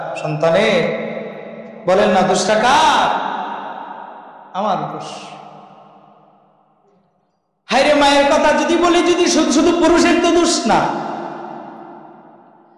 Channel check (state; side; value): identical; both; correlation 1.00